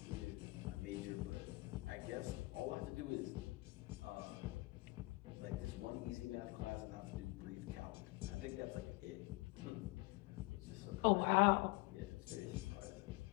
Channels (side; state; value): right; quieter; 23.1 dB